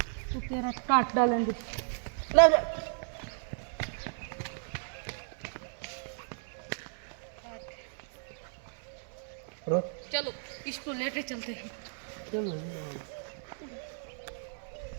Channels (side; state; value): left; silent; digital silence